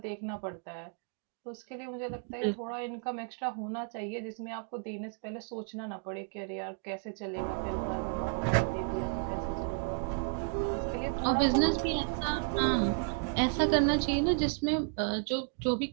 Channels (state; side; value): quieter; left; 39.8 dB